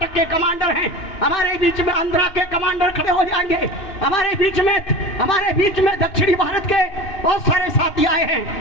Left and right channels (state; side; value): late; right; 2.6 ms